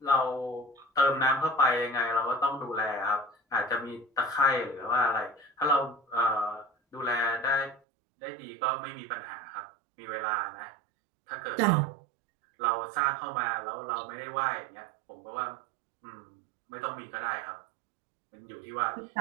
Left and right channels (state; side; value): drops out; left; at 7.8 s